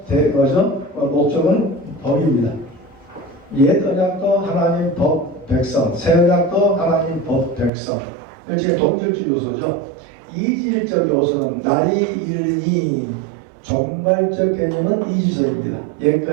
목적은 법입니다. 옛 언약도 하나님 법 백성, 새 언약도 하나님 법 백성. 일종의 동질적 요소죠. 이질적 요소는 날이 이르니, 종말적 개념은 이지서입니다.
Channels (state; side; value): drops out; left; at 7.7 s